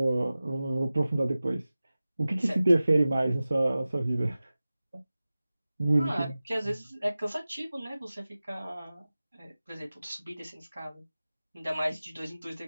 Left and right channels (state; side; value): inverted; both; correlation -0.96